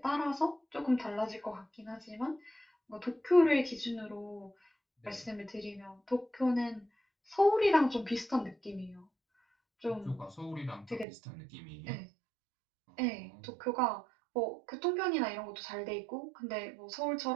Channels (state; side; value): drops out; left; at 11.1 s